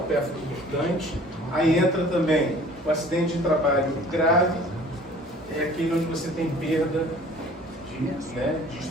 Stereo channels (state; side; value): normal; both; correlation 0.50